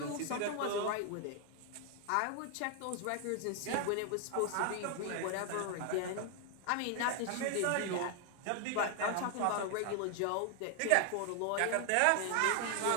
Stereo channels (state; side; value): different; both; correlation 0.00